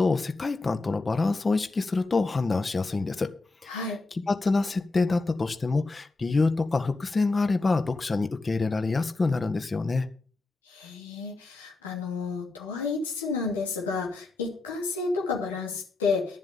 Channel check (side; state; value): right; quieter; 3.4 dB